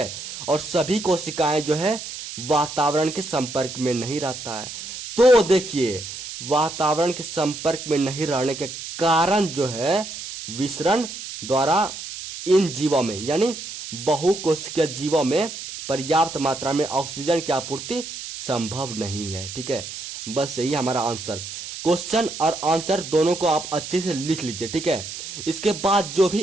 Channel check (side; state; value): right; noise; hiss, 9 dB below the sound